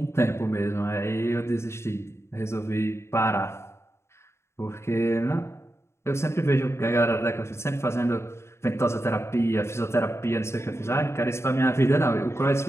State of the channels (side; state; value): right; late; 0.13 ms